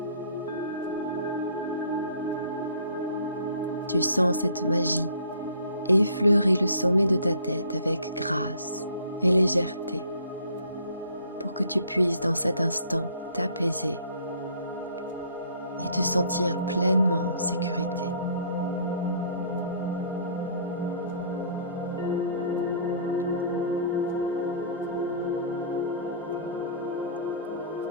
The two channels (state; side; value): inverted; both; correlation -0.54